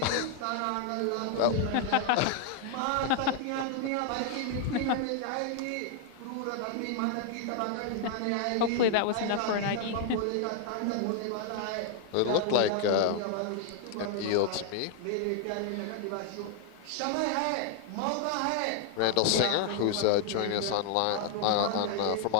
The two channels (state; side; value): different; both; correlation 0.00